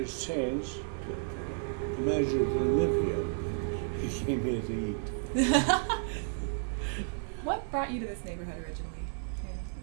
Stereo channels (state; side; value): silent; left; digital silence